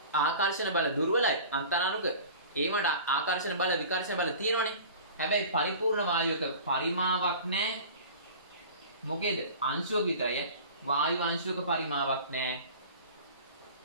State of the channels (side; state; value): both; inverted; correlation -0.40